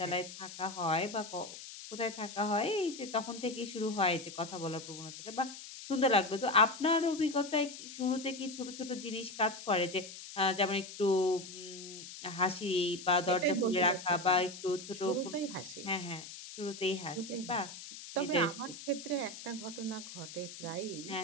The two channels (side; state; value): left; noise; hiss, 12 dB below the sound